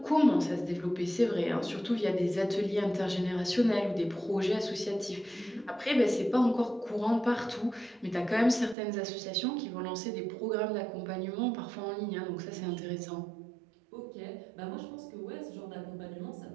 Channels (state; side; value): drops out; left; at 8.8 s